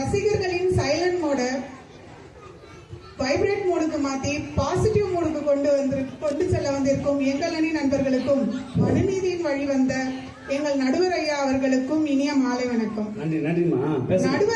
சைலண்ட் மோட வைப்ரேட் மோடுக்கு மாத்தி பாசிட்டிவ் மோடுக்கு கொண்டு செல்ல வந்திருக்கும் எங்கள் அணி நண்பர்களுக்கும் மனுநீதியின் வழி வந்த எங்கள் நடுவர் ஐயா அவர்களுக்கும் இனிய மாலை வணக்கம்.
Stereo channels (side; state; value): both; identical; correlation 1.00